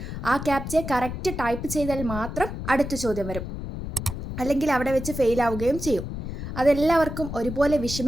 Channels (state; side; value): noise; left; rumble, 7 dB below the sound